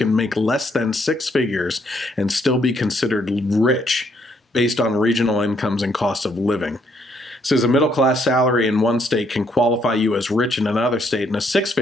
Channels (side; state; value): both; normal; correlation 0.71